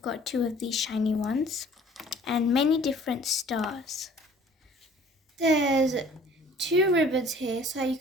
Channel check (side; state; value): both; normal; correlation 0.52